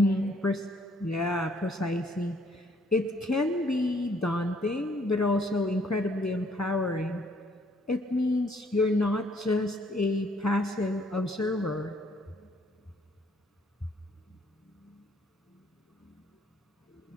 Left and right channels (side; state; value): both; normal; correlation 0.65